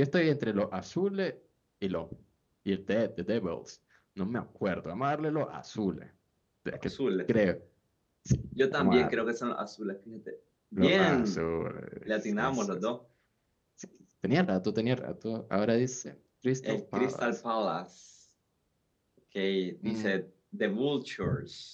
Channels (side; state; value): both; identical; correlation 1.00